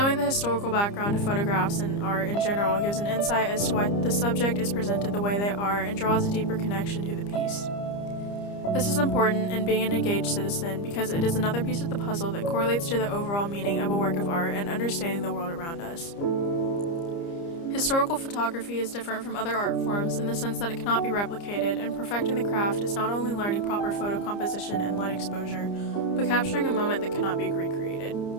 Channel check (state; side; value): late; right; 30 ms